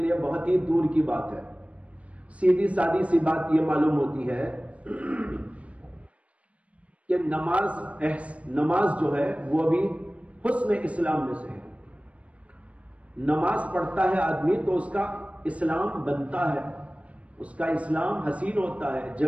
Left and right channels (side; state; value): left; late; 0.064 ms